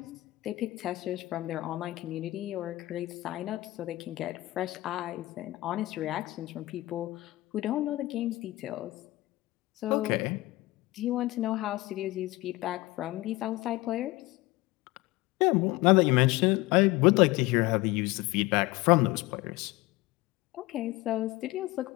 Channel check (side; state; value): right; quieter; 19.2 dB